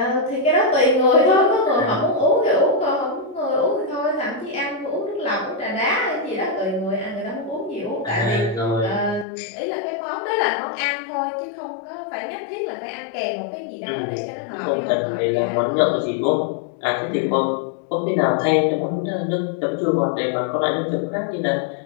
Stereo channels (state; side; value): drops out; right; at 9.2 s